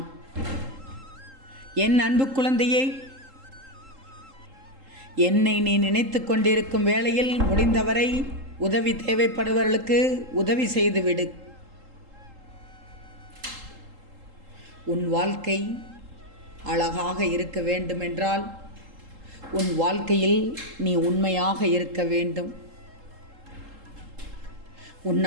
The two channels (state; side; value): late; left; 3.8 ms